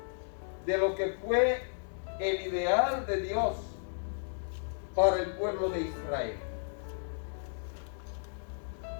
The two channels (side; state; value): right; silent; digital silence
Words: de lo que fue el ideal de Dios para el pueblo de Israel.